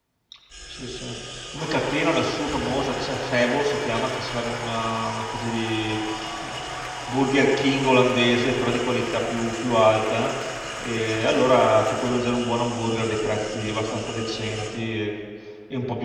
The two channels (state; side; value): identical; both; correlation 1.00